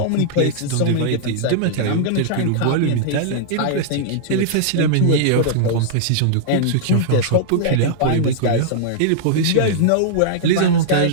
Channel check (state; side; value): different; both; correlation -0.02